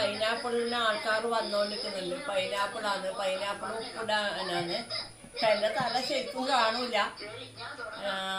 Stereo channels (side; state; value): both; identical; correlation 1.00